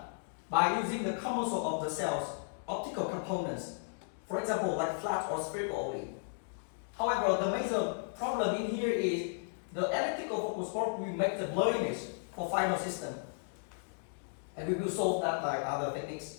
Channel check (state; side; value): silent; right; digital silence